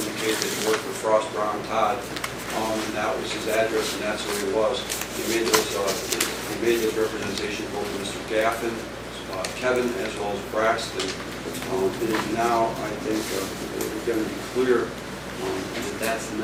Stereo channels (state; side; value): identical; both; correlation 1.00